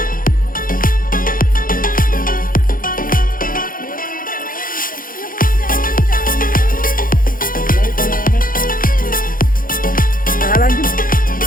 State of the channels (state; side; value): late; right; 0.40 ms